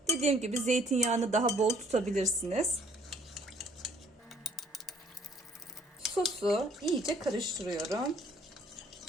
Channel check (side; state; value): both; normal; correlation 0.60